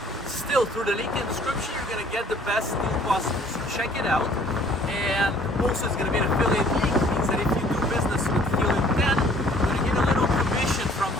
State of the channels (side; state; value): both; normal; correlation 0.56